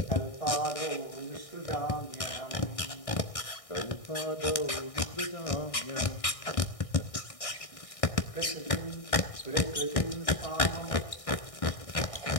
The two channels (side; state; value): right; late; 1.6 ms